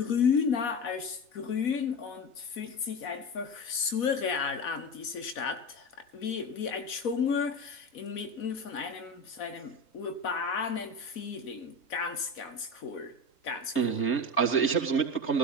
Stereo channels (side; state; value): right; late; 4.1 ms